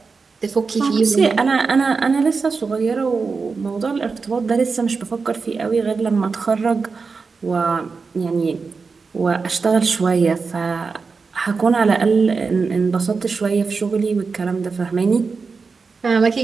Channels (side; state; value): left; quieter; 4.7 dB